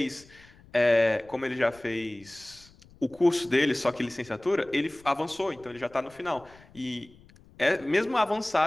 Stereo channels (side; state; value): left; noise; rumble, 25 dB below the sound